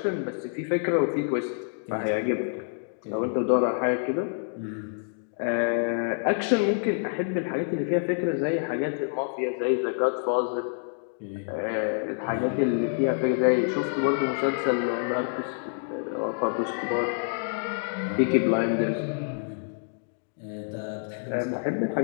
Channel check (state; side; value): silent; right; digital silence